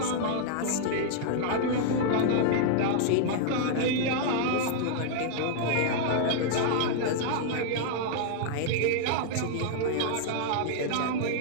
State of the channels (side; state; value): both; different; correlation -0.01